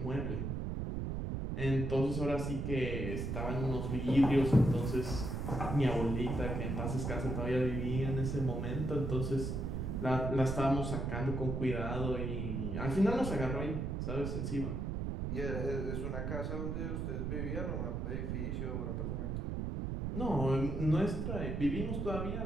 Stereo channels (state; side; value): noise; right; rumble, 2 dB below the sound